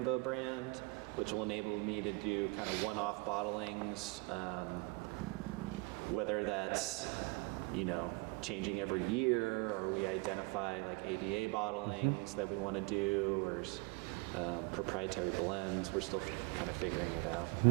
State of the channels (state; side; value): quieter; left; 27.0 dB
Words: brand, which will enable me to do kind of one-off bottlings, whether that's, changing every year, or we identify AVA bottlings that we want to do, or proprietary blends. We're still kind of figuring it out.